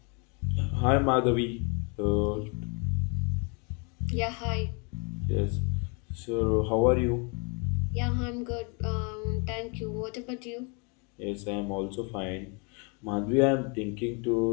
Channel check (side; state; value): right; quieter; 34.1 dB